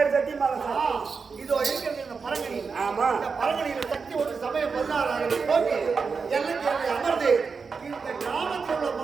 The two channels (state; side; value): quieter; left; 5.1 dB